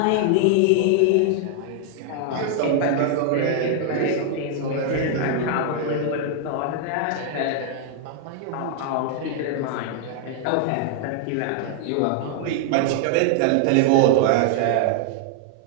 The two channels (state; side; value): different; both; correlation 0.00